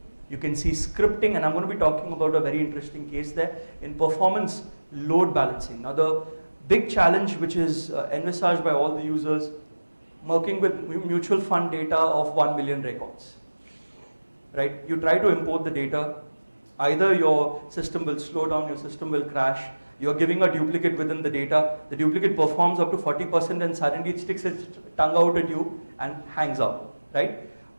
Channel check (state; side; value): inverted; both; correlation -1.00